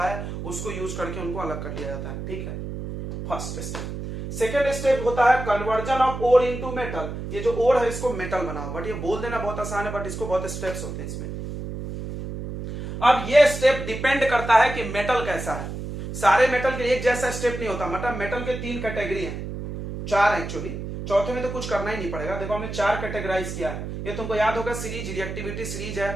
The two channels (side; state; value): right; noise; hum, 7 dB below the sound